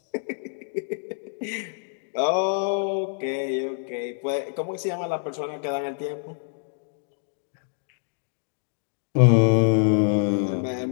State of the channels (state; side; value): silent; right; digital silence